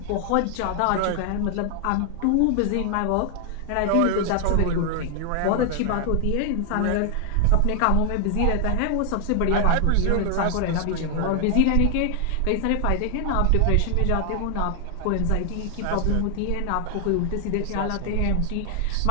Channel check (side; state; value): both; different; correlation 0.00